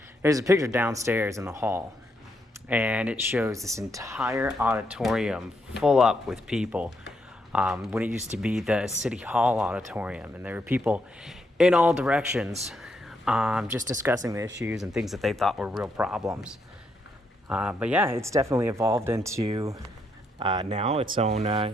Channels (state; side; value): normal; both; correlation 0.78